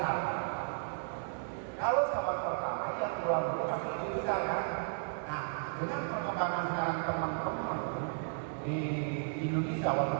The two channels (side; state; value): left; silent; digital silence